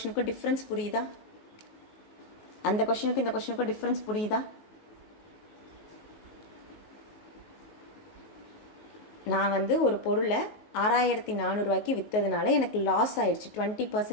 டிஃப்ரென்ஸ் புரியுதா? அந்த கொஷினுக்கும் இந்த கொஷினுக்கும் டிஃப்ரென்ஸ் புரியுதா? நான் வந்து ஒரு பொருளை 6,400 விற்றதுனால எனக்கு லாஸ் ஆயிடுச்சு,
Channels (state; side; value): late; right; 19 ms